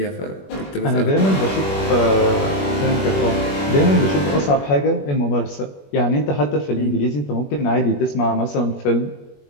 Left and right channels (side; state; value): right; late; 21 ms